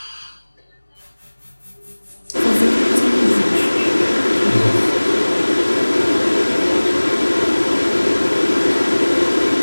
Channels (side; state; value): both; inverted; correlation -1.00